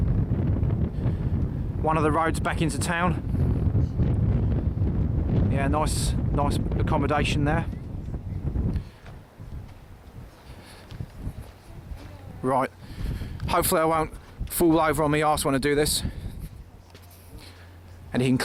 One of the roads back into town. Yeah, nice accommodation there. Right, hopefully I won't fall over on my arse when I do this. And you can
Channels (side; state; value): both; identical; correlation 1.00